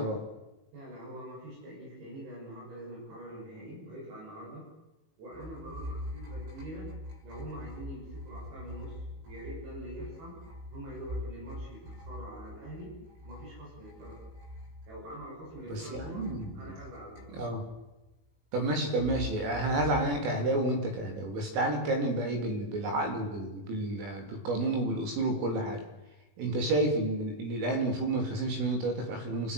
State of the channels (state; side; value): late; left; 18 ms